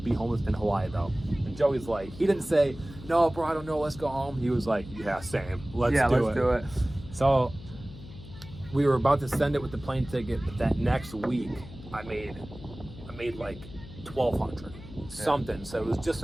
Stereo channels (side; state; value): left; noise; hum, 15 dB below the sound